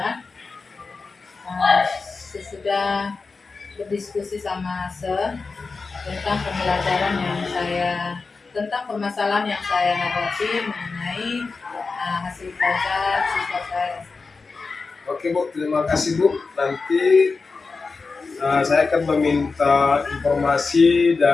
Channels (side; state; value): right; quieter; 4.3 dB